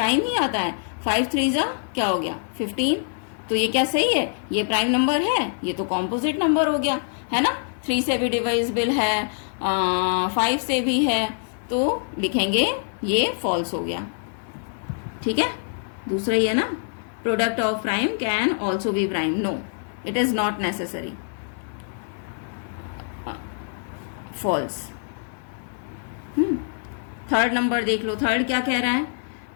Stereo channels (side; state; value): right; silent; 62 dB below the other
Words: ही आता है। 5 3 क्या हो गया 15, तो ये क्या सही है, ये प्राइम नंबर है, ये तो कॉम्पोजिट नंबर हो गया है ना। 3 से भी डिविजिबल है, 5 से भी है, तो लिखेंगे ये फॉल्स हो गया। ठीक है, दूसरा ही है ना, product of prime can also be prime, no it is not necessary, false. Third number देख लो, थर्ड क्या कह रहा है,